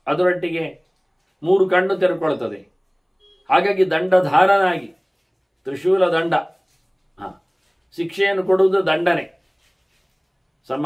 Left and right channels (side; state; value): both; identical; correlation 1.00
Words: ಅದರೊಟ್ಟಿಗೆ 3 ಕಣ್ಣು ತೆರೆಕೊಳ್ತದೆ. ಹಾಗಾಗಿ ದಂಡಧಾರನಾಗಿ, ತ್ರಿಶೂಲ ದಂಡ, ಶಿಕ್ಷೆಯನ್ನು ಕೊಡುವುದು ದಂಡನೆ,